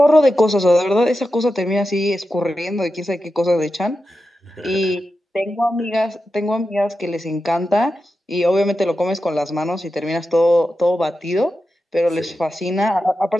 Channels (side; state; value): both; normal; correlation 0.91